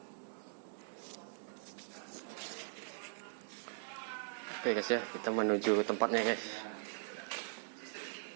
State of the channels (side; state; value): left; silent; digital silence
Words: Oke guys ya, kita menuju tempatnya guys.